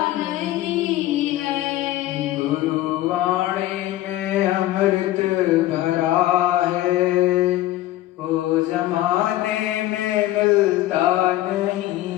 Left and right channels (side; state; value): right; quieter; 15.3 dB